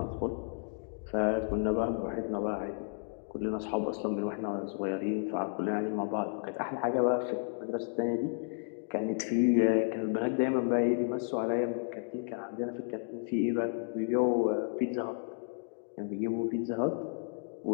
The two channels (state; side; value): silent; right; digital silence